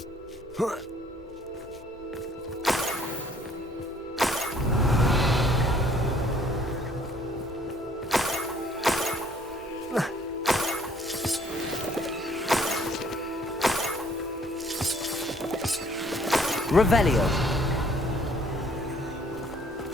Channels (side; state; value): both; normal; correlation 0.60